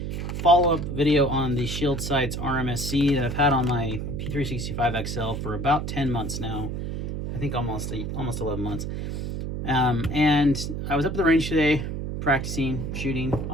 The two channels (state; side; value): noise; right; hum, 4 dB below the sound